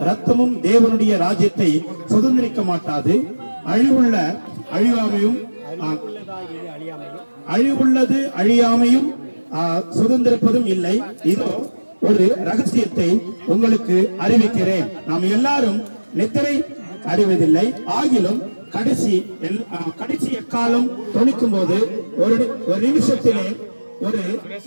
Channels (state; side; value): inverted; both; correlation -1.00